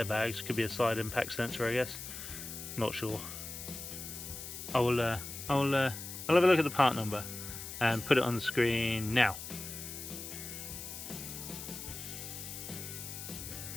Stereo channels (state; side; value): noise; left; hiss, 9 dB below the sound